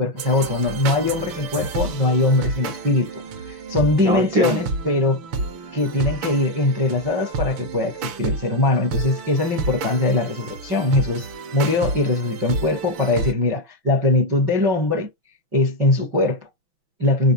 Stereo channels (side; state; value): left; late; 6.0 ms